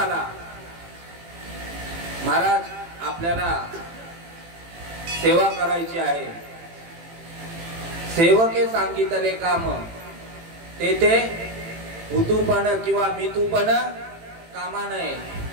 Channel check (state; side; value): late; left; 18 ms